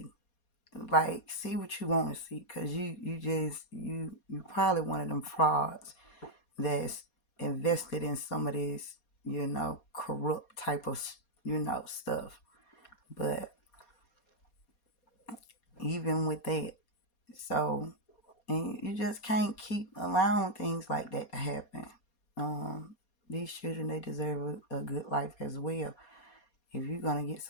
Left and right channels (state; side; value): late; right; 4.2 ms